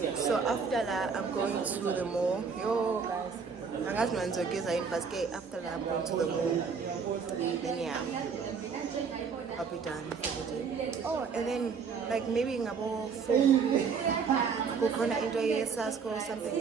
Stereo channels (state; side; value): quieter; left; 5.7 dB